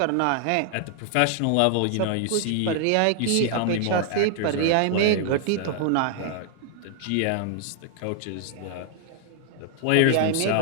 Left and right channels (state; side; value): different; both; correlation 0.00